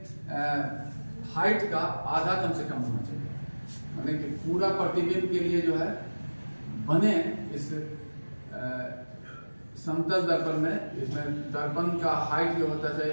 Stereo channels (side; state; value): both; inverted; correlation -1.00